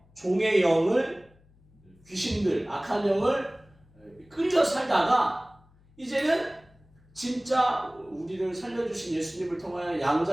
종의 영을 귀신들, 악한 영을 끌려 살다가 이제는 진짜 우리를 살려주신 예수님을 통하여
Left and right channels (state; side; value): noise; left; hum, 29 dB below the sound